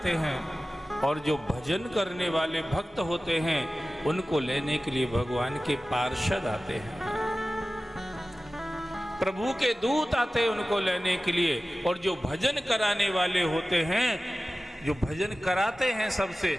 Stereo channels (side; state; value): both; normal; correlation 0.96